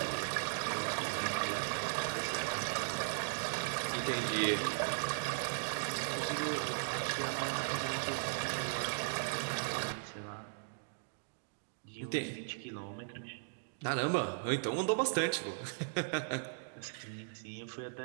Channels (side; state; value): left; silent; digital silence